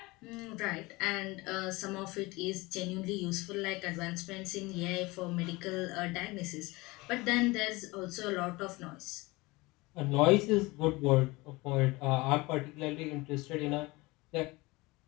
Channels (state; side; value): quieter; right; 22.6 dB